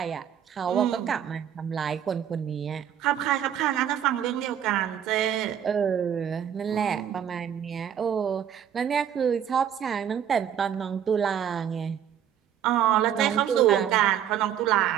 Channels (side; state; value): left; quieter; 9.3 dB